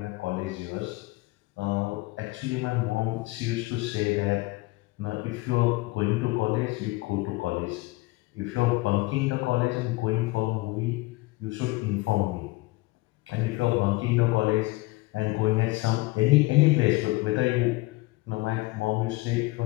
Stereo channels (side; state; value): right; quieter; 21.9 dB